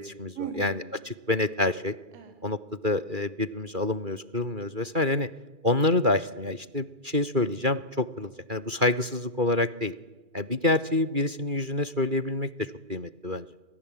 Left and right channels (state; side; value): late; left; 2.4 ms